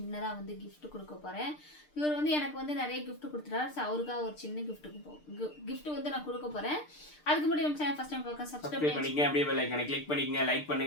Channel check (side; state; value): right; late; 6.7 ms